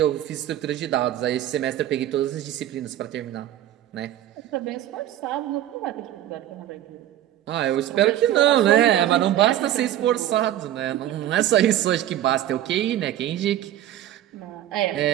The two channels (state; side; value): quieter; left; 12.6 dB